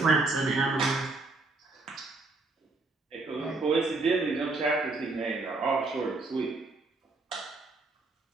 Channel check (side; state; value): left; quieter; 3.4 dB